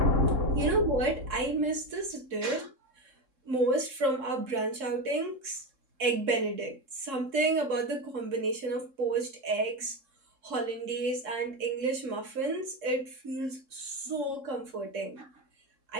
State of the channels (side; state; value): left; late; 3.7 ms